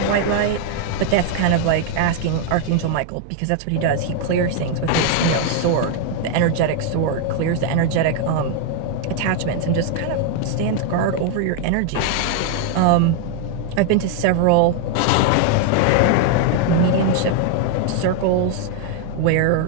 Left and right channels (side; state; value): both; different; correlation 0.00